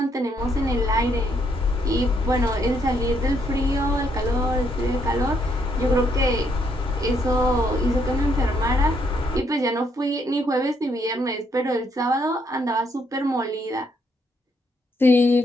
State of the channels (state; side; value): normal; both; correlation 0.73